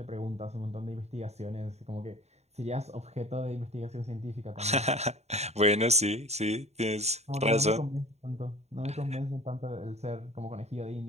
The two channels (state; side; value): late; left; 0.32 ms